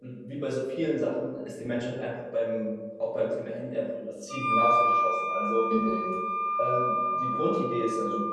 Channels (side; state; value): both; identical; correlation 1.00